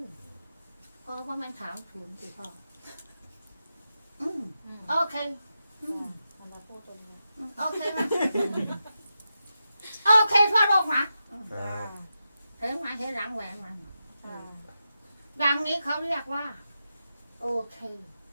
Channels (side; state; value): both; inverted; correlation -0.89